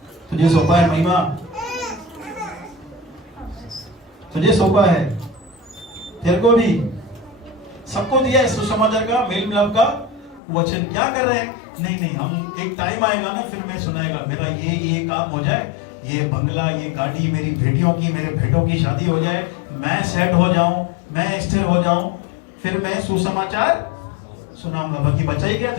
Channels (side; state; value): right; drops out; at 10.4 s